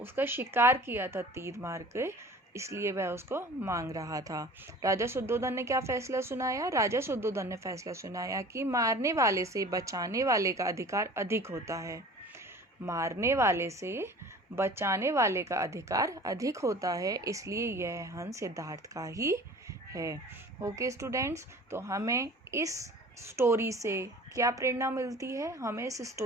शिकार किया था तीर मार के, इसलिए वह उसको मांग रहा था। राजा शुद्धोधन ने क्या फैसला सुनाया? राजा शुद्धोधन ने फैसला सुनाया कि मारने वाले से बचाने वाले का अधिकार अधिक होता है। मारने वाले से बचाने वाले का अधिकार अधिक होता है, इसलिए यह हंस सिद्धार्थ का ही है। ओके स्टूडेंट्स, तो हमें इस स्टोरी से क्या प्रेरणा मिलती है? हमें इस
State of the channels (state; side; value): normal; both; correlation 0.43